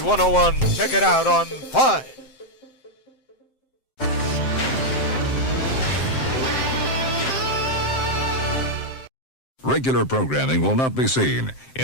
Check it out on 5. Regular programming will not be seen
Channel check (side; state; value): right; late; 7.7 ms